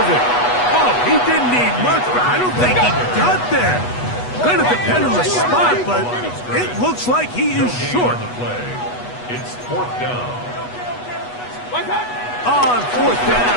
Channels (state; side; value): late; right; 8.2 ms